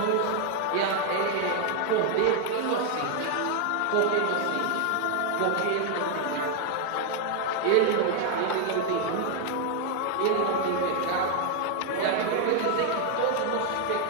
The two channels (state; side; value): different; both; correlation 0.00